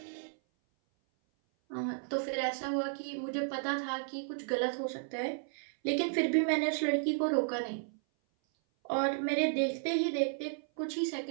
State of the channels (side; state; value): left; silent; 55 dB below the other